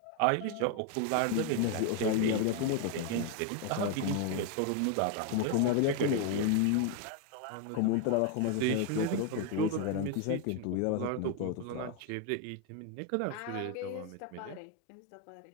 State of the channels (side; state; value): both; different; correlation 0.01